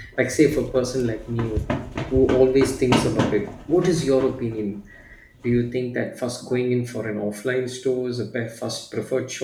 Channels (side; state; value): both; identical; correlation 1.00